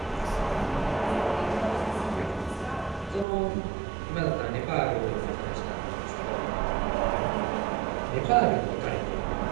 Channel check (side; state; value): left; drops out; at 3.2 s